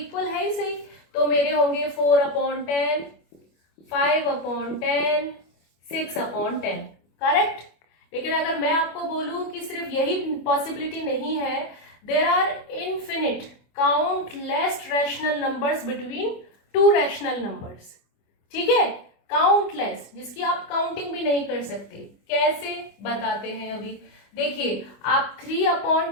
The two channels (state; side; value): late; right; 25 ms